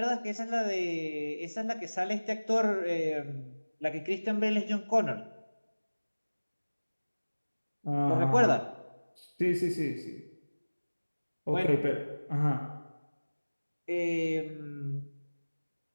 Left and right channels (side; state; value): both; inverted; correlation -1.00